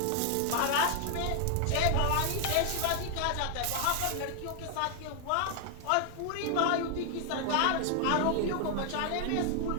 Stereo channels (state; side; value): different; both; correlation 0.00